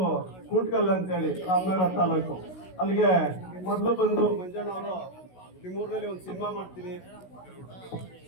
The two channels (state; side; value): late; right; 16 ms